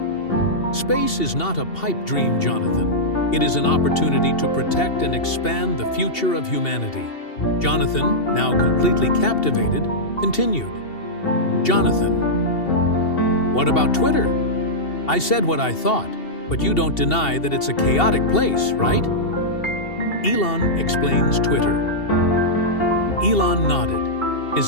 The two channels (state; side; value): late; right; 2.7 ms